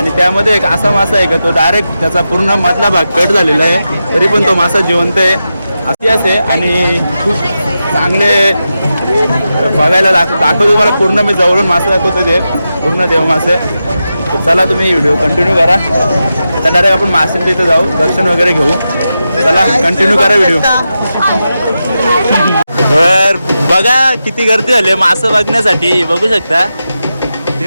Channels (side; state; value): both; inverted; correlation -0.90